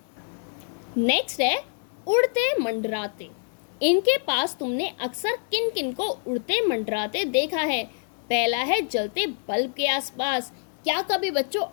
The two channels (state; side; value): silent; right; 61 dB below the other